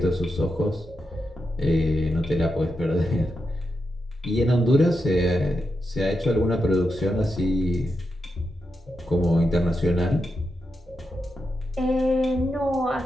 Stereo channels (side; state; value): both; normal; correlation 0.86